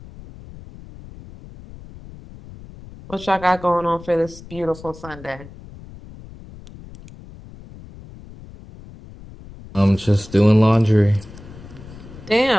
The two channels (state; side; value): noise; left; rumble, 18 dB below the sound